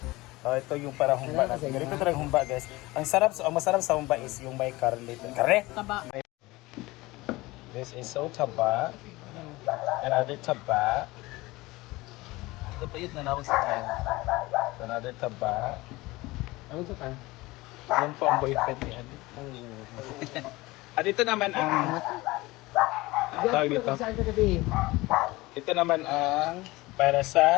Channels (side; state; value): right; quieter; 20.6 dB